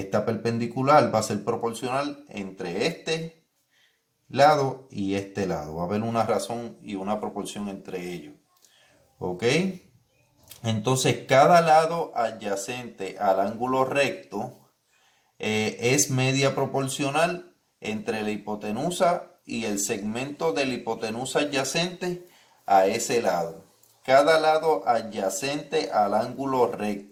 perpendicular va a ser proporcional entre este lado y este lado. Va a haber una razón y una proporción entre ellos. ¿Ok? Entonces, cada lado adyacente al ángulo recto es media proporcional entre la hipotenusa y el segmento de la hipotenusa adyacente a ese lado. Cada lado adyacente al ángulo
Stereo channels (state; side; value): identical; both; correlation 1.00